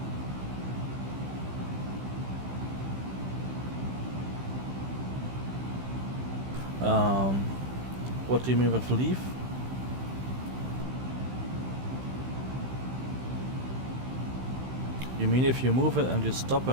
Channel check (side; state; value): left; late; 16 ms